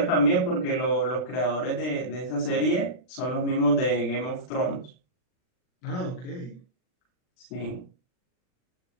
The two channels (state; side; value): late; right; 39 ms